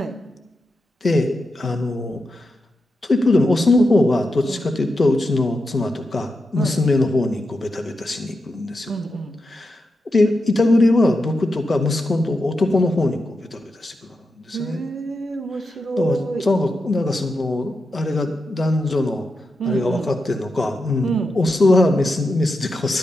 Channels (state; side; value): normal; both; correlation 0.88